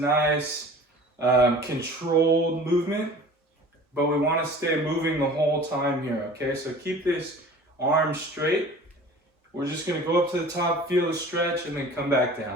controlled movement, but we want to stay moving the whole time here, okay? So keep this arm straight. We're just going to go up to the top, feel the stretch, and then come back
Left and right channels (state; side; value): normal; both; correlation 0.43